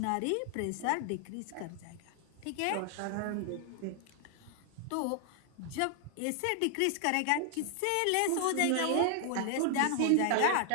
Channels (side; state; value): both; different; correlation 0.00